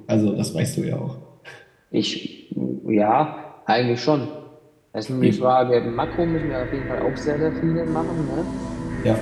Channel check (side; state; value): both; identical; correlation 1.00